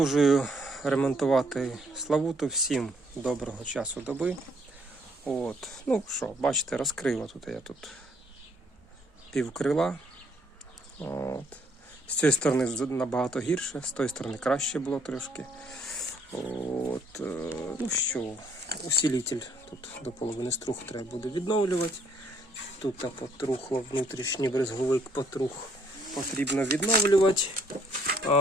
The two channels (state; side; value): normal; both; correlation 0.67